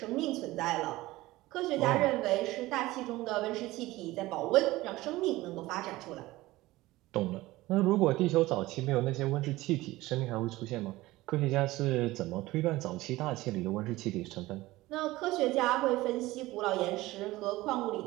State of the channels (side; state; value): left; quieter; 18.4 dB